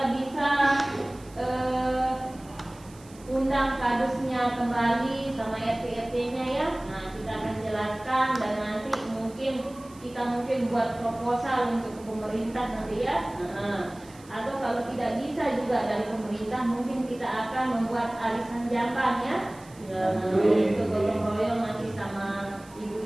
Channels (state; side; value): noise; right; hiss, 24 dB below the sound